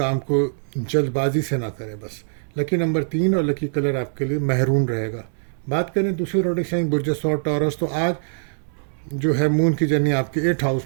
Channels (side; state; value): left; silent; 64 dB below the other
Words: کو جلد بازی سے نہ کریں بس۔ لکی نمبر 3 اور لکی کلر آپ کے لیے مہرون رہے گا۔ بات کریں دوسرے زوڈک سائن برج ثور ٹورس، تو آج جو ہے مون کی جرنی آپ کے 8th